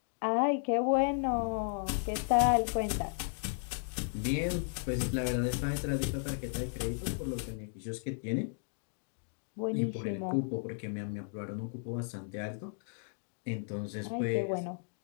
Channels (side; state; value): right; silent; digital silence